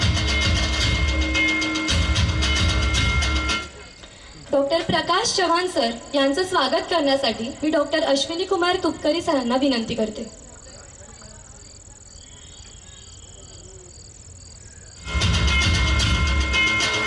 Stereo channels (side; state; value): both; identical; correlation 1.00